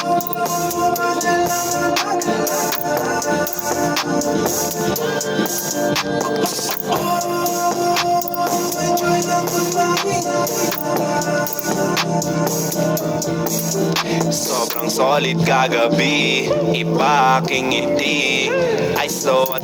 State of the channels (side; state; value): both; identical; correlation 1.00